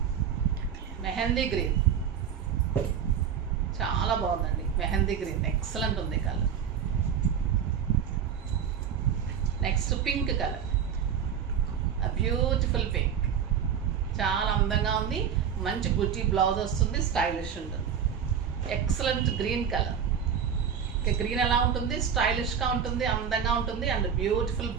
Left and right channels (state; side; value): quieter; left; 7.9 dB